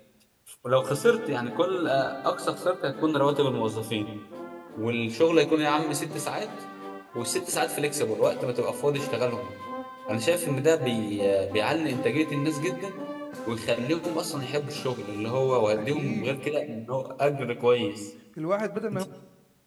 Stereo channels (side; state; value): both; identical; correlation 1.00